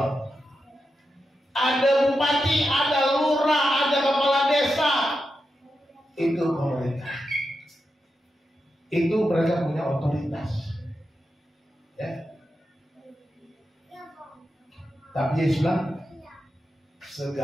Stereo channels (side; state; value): both; normal; correlation 0.88